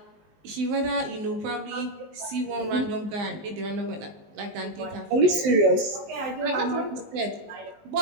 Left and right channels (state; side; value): late; left; 19 ms